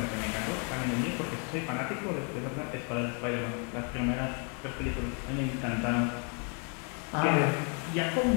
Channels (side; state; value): right; quieter; 38.1 dB